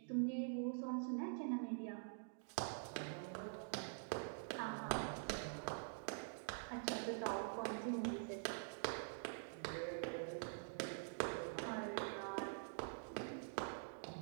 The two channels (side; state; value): left; silent; digital silence